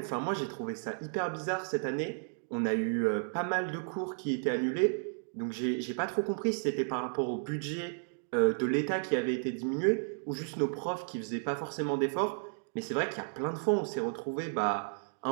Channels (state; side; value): silent; left; digital silence